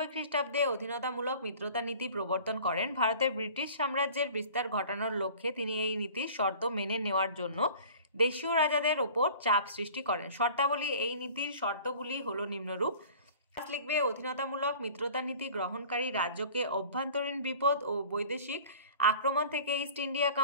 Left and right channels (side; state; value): both; inverted; correlation -0.45